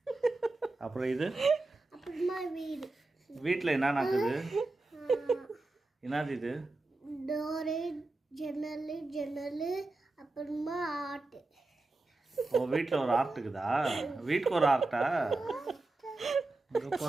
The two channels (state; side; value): quieter; left; 3.1 dB